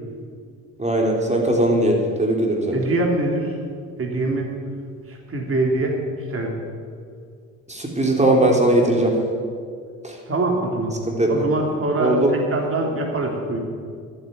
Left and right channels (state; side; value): normal; both; correlation 0.36